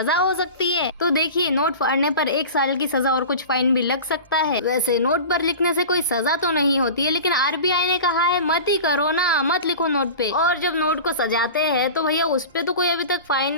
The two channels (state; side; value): inverted; both; correlation -0.34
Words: हो सकती है? तो देखिए, नोट फाड़ने पर 1 साल की सजा और कुछ फाइन भी लग सकता है। वैसे नोट पर लिखने से कोई सजा तो नहीं होती है, लेकिन आरबीआई ने कहा है मत ही करो ना, मत लिखो नोट पे। और जब नोट को सजाते हैं तो भैया उस पे तो कोई अभी तक फाइन